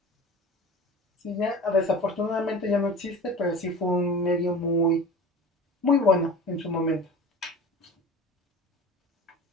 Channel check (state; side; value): normal; both; correlation 0.37